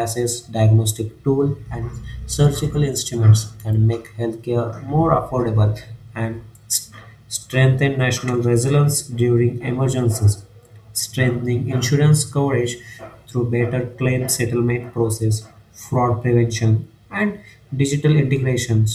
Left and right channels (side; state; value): both; identical; correlation 1.00